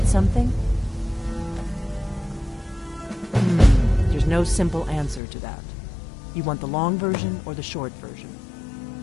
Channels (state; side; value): drops out; right; at 5.2 s